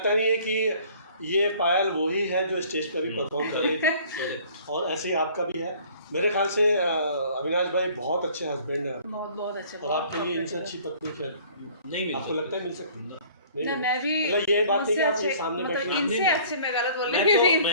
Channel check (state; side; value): inverted; both; correlation -0.52